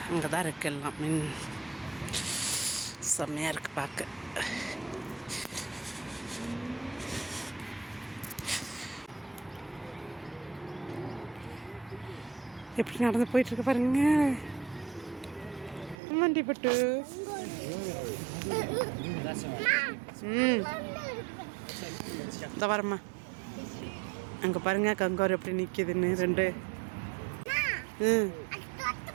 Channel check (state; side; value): drops out; left; at 16.0 s